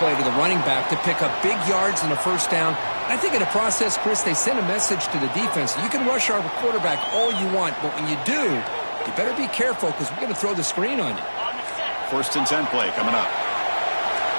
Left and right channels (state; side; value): inverted; both; correlation -1.00